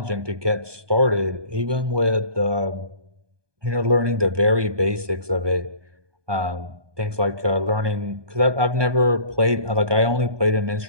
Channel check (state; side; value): late; left; 1.2 ms